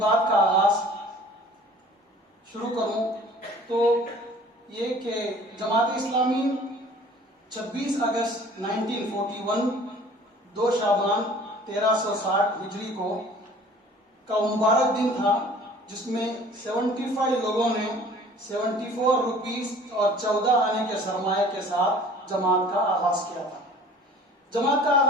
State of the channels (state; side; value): normal; both; correlation 0.49